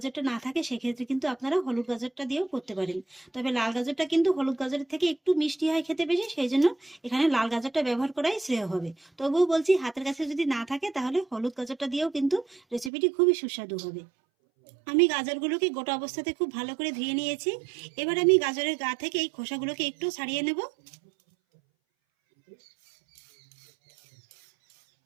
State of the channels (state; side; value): drops out; left; at 12.9 s